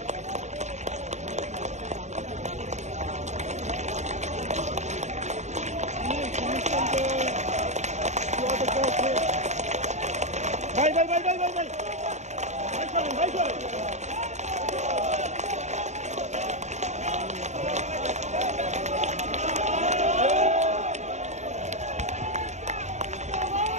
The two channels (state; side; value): late; left; 0.34 ms